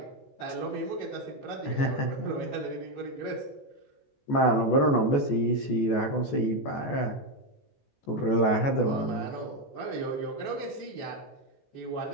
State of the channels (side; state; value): right; late; 14 ms